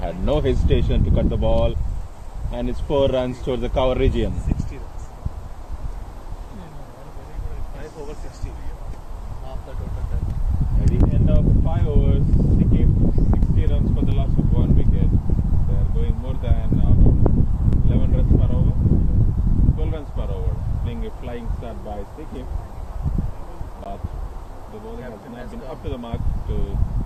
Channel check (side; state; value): both; identical; correlation 1.00